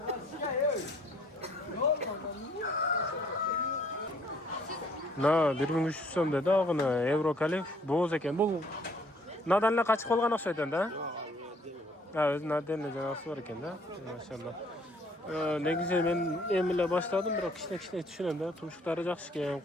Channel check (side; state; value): both; normal; correlation 0.61